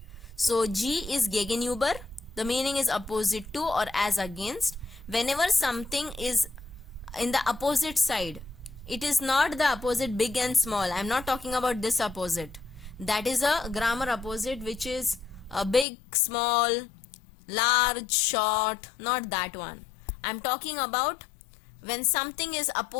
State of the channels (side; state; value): right; drops out; at 15.9 s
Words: So G is Gegenüber. The meaning is opposite to or as against. Whenever something is in the opposite side, it is not the opposite big and small. I am not talking about this opposite. That is a grammar opposite which is a big, small, large, short, not that one. I am talking about when something is